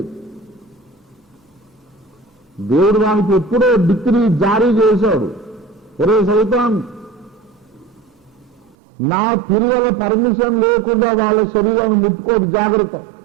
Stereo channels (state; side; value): drops out; left; at 8.8 s